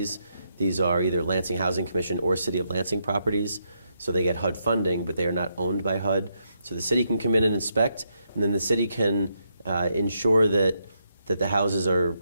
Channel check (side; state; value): both; inverted; correlation -0.80